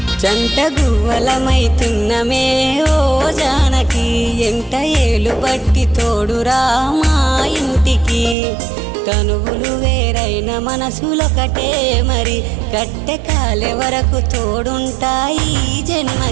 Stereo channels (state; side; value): drops out; left; at 8.3 s